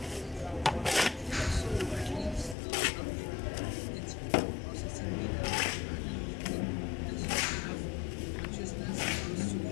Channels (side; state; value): right; drops out; at 2.6 s